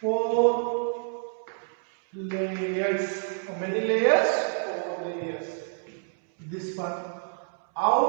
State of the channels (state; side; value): silent; left; 60 dB below the other